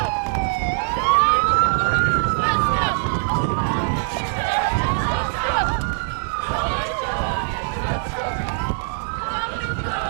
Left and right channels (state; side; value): silent; left; digital silence